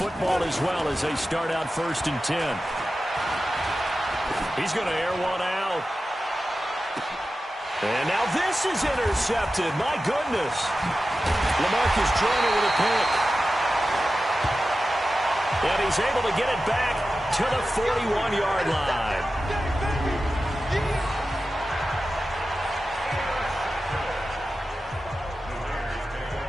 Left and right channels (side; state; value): both; normal; correlation 0.93